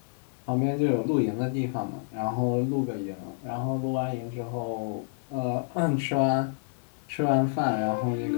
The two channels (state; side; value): silent; right; digital silence